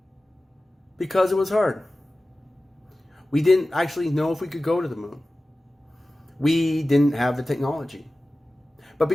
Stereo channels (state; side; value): normal; both; correlation 0.96